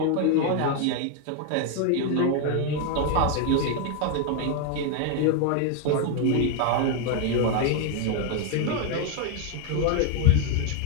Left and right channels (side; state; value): both; different; correlation 0.01